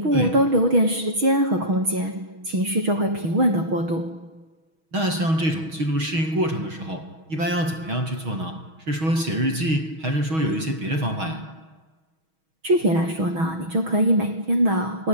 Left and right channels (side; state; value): left; late; 6.3 ms